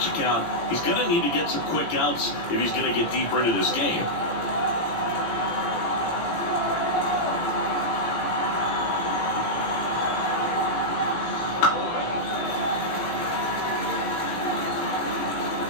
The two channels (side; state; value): right; late; 18 ms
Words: count. He's going to need to get some quick outs if he's going to get deeper into this game.